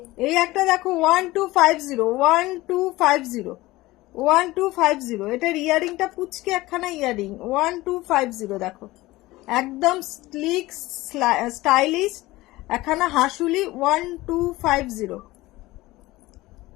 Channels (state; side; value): quieter; right; 18.9 dB